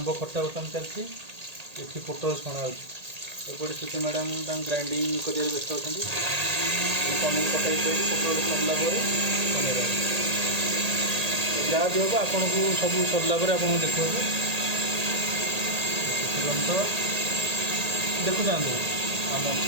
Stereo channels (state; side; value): late; left; 1.8 ms